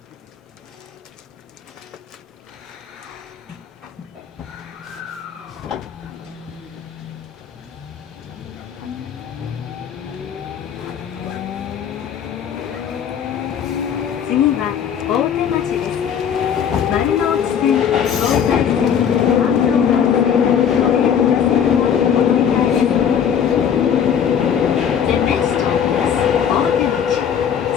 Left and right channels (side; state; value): right; quieter; 8.2 dB